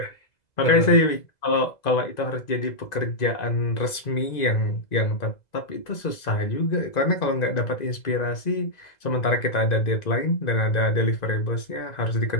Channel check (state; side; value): late; right; 2.0 ms